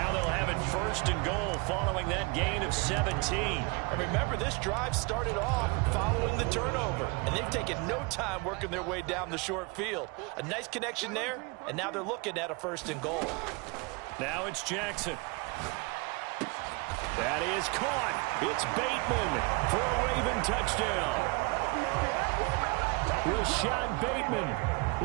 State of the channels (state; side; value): quieter; left; 28.3 dB